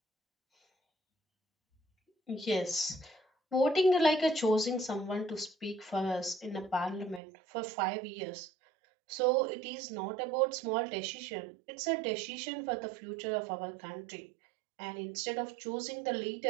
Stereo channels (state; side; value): drops out; left; at 7.2 s